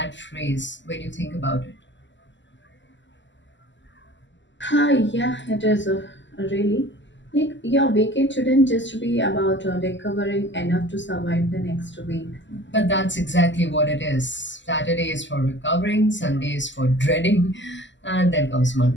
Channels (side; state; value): right; late; 0.54 ms